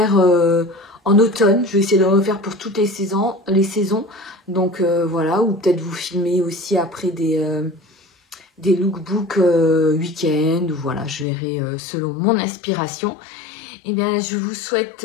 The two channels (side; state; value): right; drops out; at 11.2 s